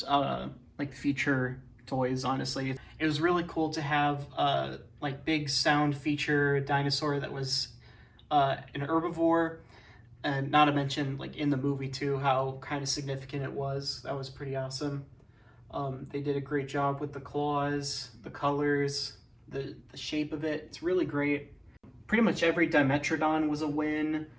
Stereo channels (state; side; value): identical; both; correlation 1.00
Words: like feature toys, honestly. It was really cool to have like big sound feature dinosaur that was an herbivore, and not to mention like in the movie too, how kind of significant it was. That was pretty awesome. They did a great job with the claws, the colors, the shape of it. It's really great. Pretty much every Dimetrodon was a win.